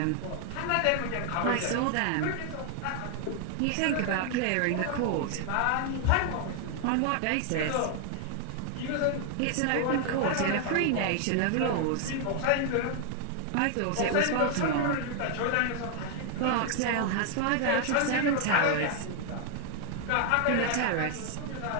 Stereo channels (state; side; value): different; both; correlation 0.00